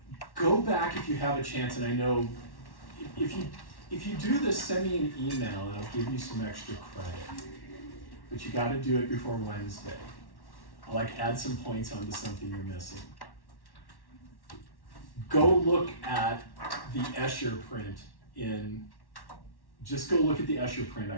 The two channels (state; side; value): late; right; 1.1 ms